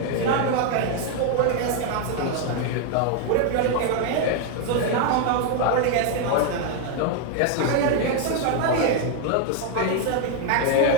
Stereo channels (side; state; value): both; different; correlation 0.00